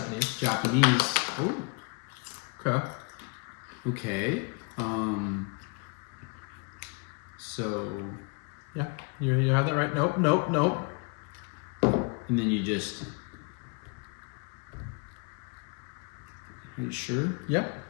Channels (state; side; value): quieter; right; 33.4 dB